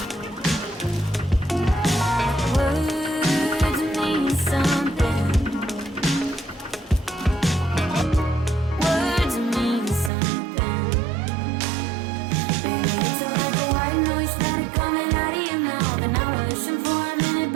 Words mean something. Words mean something. Baby, it's like a white noise started coming out of your mouth, and I was listening for a minute,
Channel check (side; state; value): left; drops out; at 10.1 s